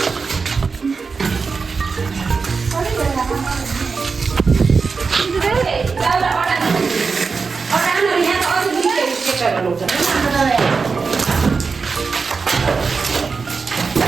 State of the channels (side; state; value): left; quieter; 4.8 dB